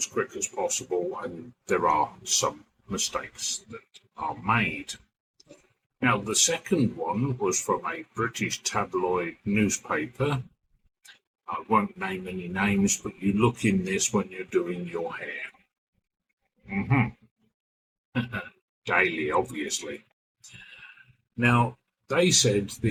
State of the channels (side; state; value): both; identical; correlation 1.00